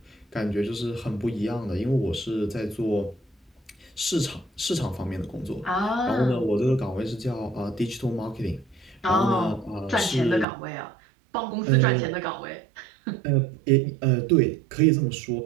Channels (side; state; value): left; drops out; at 10.5 s